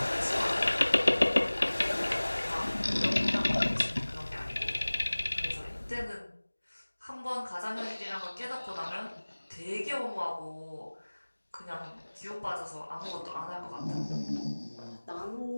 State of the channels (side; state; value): both; inverted; correlation -1.00